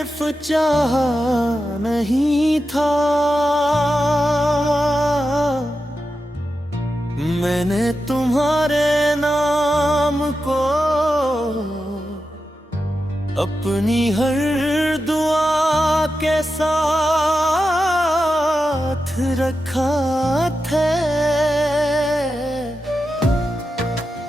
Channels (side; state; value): both; normal; correlation 0.90